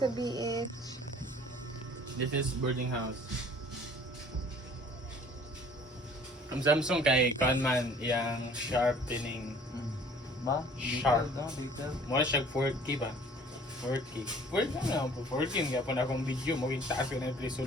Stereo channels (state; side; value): normal; both; correlation 0.52